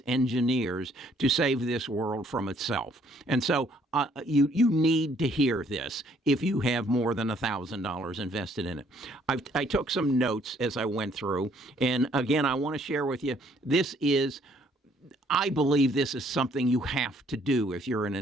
engineers, to save this world from itself. And so you need to hear this if you have more than $1,000 invested in it. I took some notes as I went through, and again, I want to share with you, I believe this is something you have to do if you're an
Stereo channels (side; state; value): both; normal; correlation 0.64